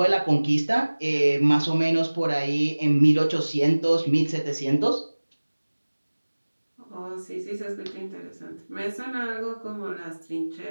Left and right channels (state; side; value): inverted; both; correlation -1.00